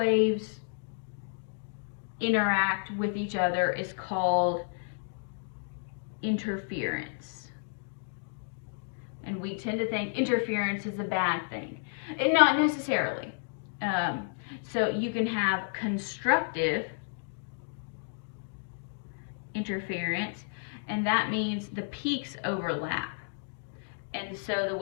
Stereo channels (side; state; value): right; silent; digital silence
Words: interact with each other, is called interference. And we tend to think interference is a bad thing, and not necessarily. So you can have constructive interference, and that means the peaks overlap. And so the